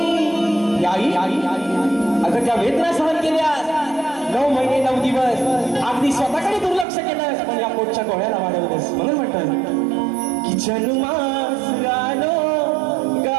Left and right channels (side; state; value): left; drops out; at 6.9 s